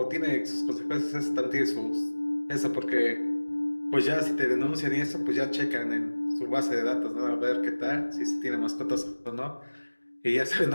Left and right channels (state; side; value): inverted; both; correlation -1.00